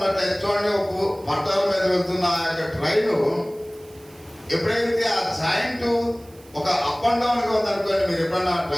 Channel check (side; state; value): right; noise; hiss, 26 dB below the sound